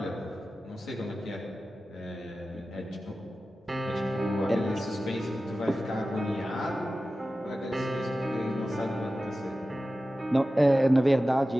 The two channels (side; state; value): both; normal; correlation 0.94